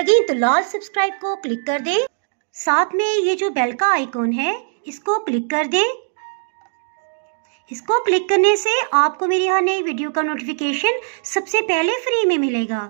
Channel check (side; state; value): left; silent; digital silence